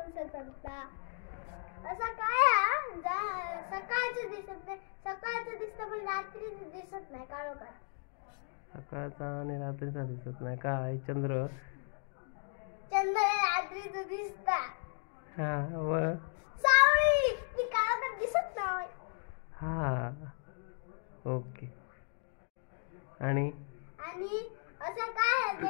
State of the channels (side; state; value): right; silent; 54 dB below the other